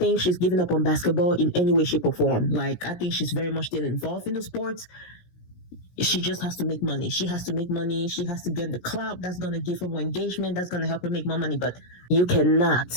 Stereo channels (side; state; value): right; late; 17 ms